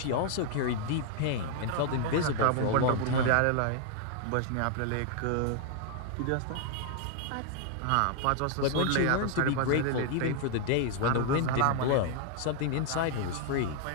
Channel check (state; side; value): different; both; correlation 0.00